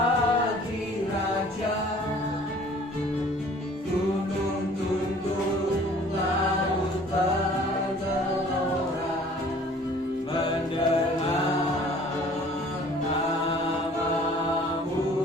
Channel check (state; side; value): normal; both; correlation 0.52